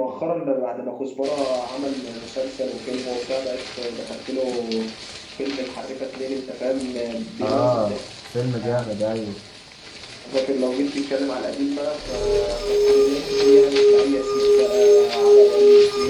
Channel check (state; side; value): identical; both; correlation 1.00